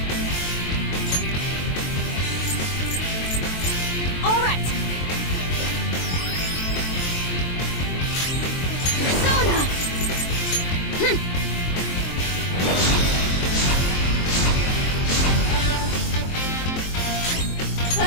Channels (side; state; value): right; late; 23 ms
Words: All right. Persona!